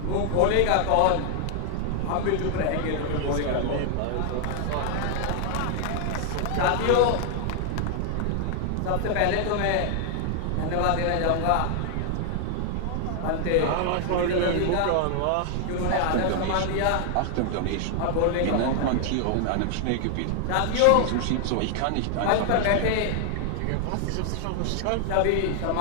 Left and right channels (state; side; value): different; both; correlation 0.00